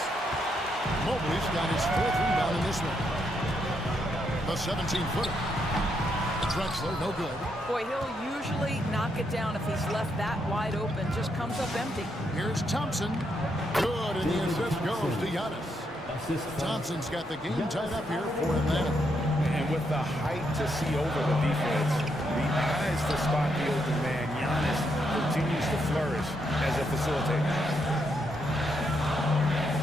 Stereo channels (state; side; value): normal; both; correlation 0.78